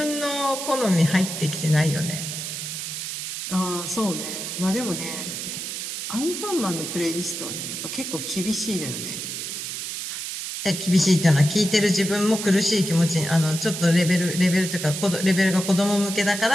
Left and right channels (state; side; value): noise; right; hiss, 5 dB below the sound